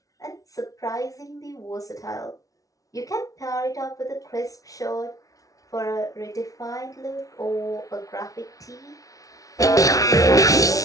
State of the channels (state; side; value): late; right; 0.17 ms